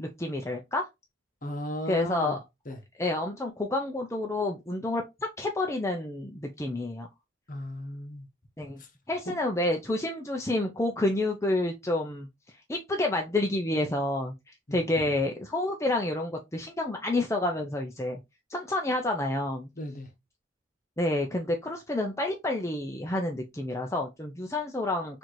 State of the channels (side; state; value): both; normal; correlation 0.57